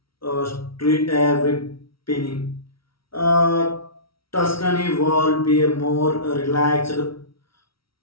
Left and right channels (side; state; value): right; late; 0.75 ms